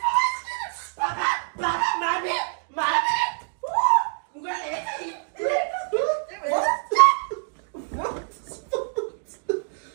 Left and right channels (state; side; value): silent; left; digital silence